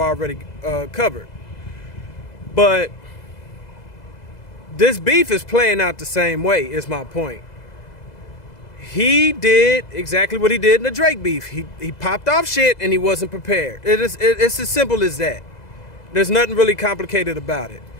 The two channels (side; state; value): right; late; 2.0 ms